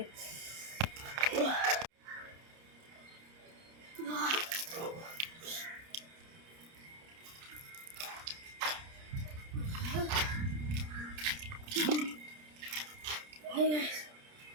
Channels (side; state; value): left; late; 30 ms